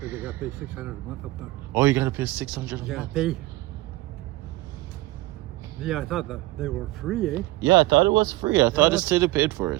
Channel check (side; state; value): left; quieter; 19.1 dB